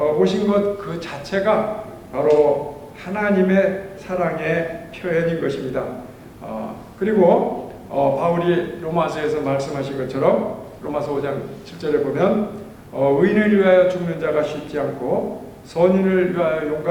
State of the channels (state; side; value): identical; both; correlation 1.00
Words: 것 그 자체가 바로 하나님의 사랑의 표현인 것입니다. 그리고 바울이 로마서에서 말씀하신 것처럼 로마서 5장 7절에 보면 의인을 위하여 죽는 자가 쉽지 않고 선인을 위하여